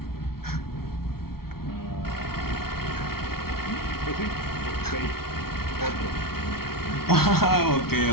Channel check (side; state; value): right; late; 0.94 ms